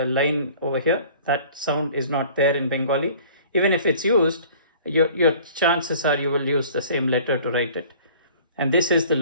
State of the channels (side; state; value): both; inverted; correlation -0.49